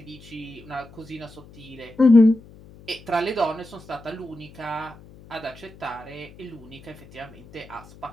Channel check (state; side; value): noise; left; hum, 21 dB below the sound